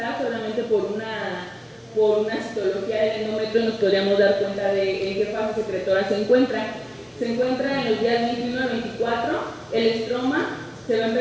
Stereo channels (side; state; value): both; identical; correlation 1.00